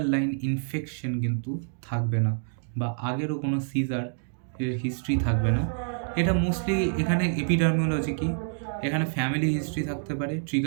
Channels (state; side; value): silent; left; digital silence